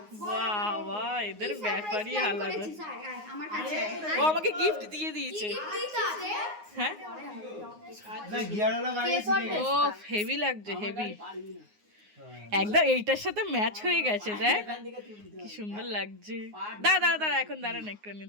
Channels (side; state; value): left; late; 9.6 ms